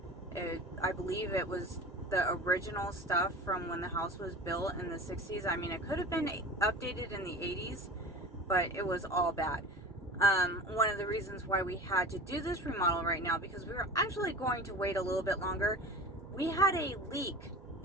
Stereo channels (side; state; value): both; normal; correlation 0.35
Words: I believe it was the original stuff from when the house was built in the 60s. I mean, it could have been updated in the 80s, but it was all bad. One of the reasons why we had to do this remodel right now, because we were actually going to wait a little bit longer. We had a leak